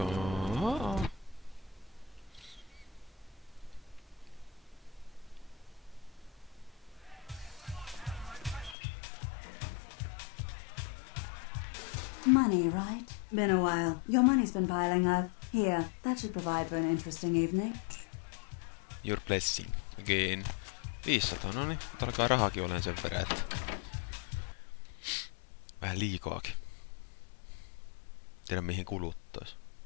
Money, right? Been a while. Your money's been piling up. Here, that should provide for an interesting evening. Your blessing. Again. 500, no niin. Mutta alkaa rahakin olemaan sen verran, että... Vähän liikaakin. Tiedä mihin kuluttais.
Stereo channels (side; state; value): right; drops out; at 8.8 s